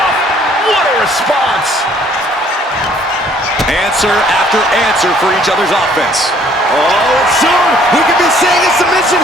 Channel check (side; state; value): both; normal; correlation 0.60